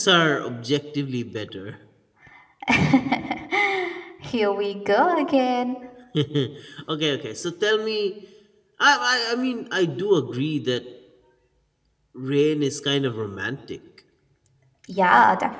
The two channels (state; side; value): identical; both; correlation 1.00